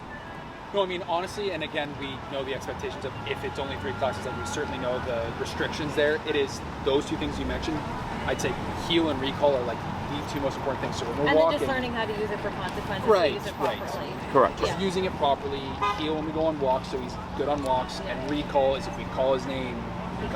No, I mean, honestly, and again, we know the expectations of if it's only 3 classes, and we certainly know the restrictions there. It is those 2 things you mentioned. I'd say heel and recall are like the 2 most important things. So when we're And then walking, just learning how to use it for consequences, Right, to use it right. properly. Correct. just using it properly. Heel when we go on walks, so he's good on walks. And recall is if we call his name and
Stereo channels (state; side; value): identical; both; correlation 1.00